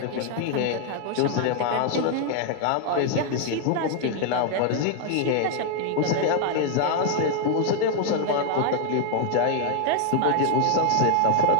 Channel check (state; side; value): different; both; correlation 0.00